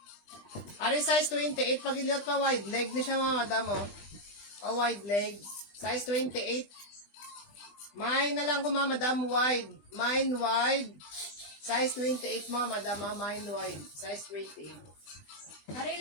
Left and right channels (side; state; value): right; late; 20 ms